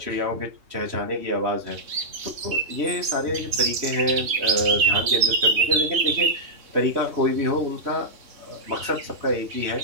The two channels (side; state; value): left; late; 3.6 ms